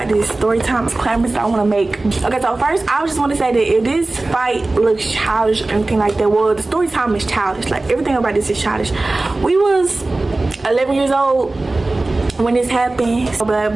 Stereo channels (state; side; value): quieter; left; 3.1 dB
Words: this story time disclaimers that I want to make. Okay, so first, I just want to say that if this fight looks childish or anything like that, well, the story time is childish. Like, everything about this is childish. We was 11 years old when this happened. So bad